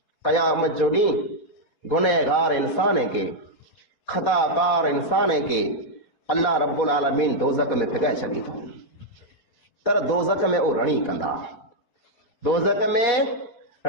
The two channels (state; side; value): late; right; 4.1 ms